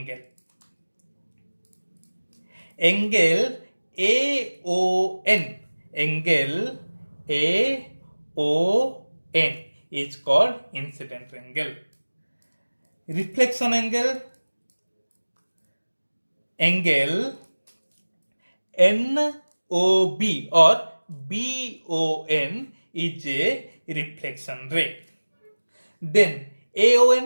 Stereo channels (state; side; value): inverted; both; correlation -1.00